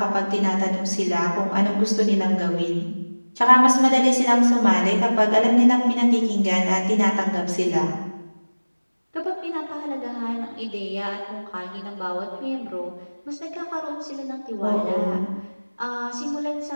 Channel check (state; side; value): inverted; both; correlation -1.00